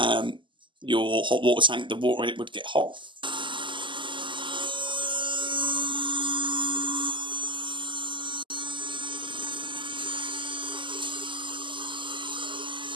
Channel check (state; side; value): late; left; 0.24 ms